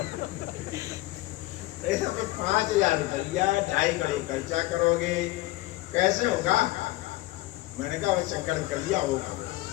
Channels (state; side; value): quieter; right; 18.9 dB